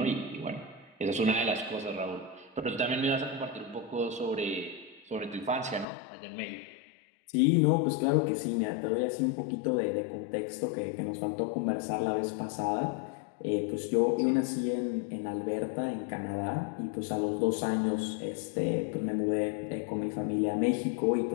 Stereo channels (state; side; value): drops out; right; at 5.9 s